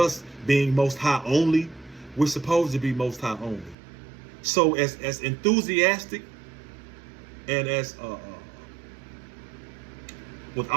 being Most High only. We're supposed to be Most High only. So as enthusiastic and as with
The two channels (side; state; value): left; drops out; at 3.8 s